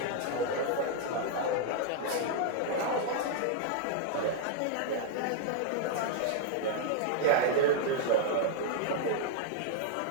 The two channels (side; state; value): both; different; correlation -0.01